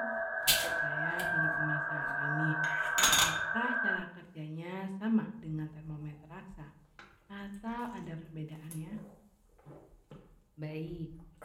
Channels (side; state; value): both; identical; correlation 1.00